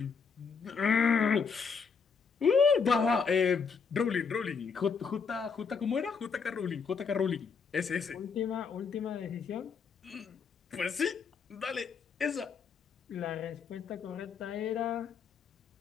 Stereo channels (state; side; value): quieter; right; 5.7 dB